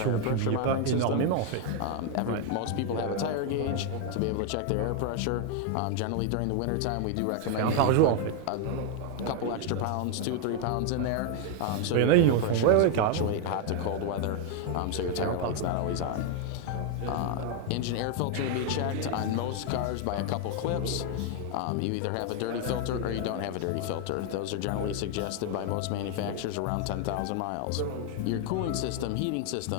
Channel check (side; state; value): both; different; correlation 0.01